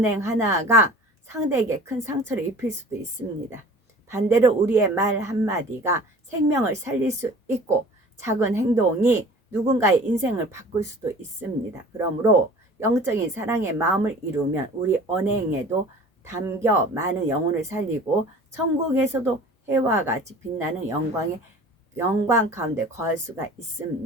하나가 상대에게 큰 상처를 입힐 수도 있습니다. 반대로 우리의 말 한마디가 생명을 살릴 수 있고 작은 행동이 누군가의 인생을 바꿀 수도 있습니다. 그러므로 영적인 사랑의 마음을 이루면 우리 언행에도 담겨 많은 영혼을 살리고 천국에서도 해와 같이 빛나는 영광 가운데 거할 수가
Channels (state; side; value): normal; both; correlation 0.44